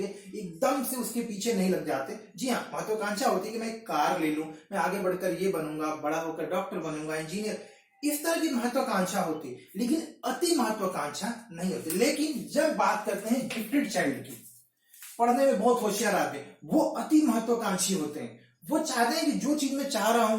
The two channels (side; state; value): both; identical; correlation 1.00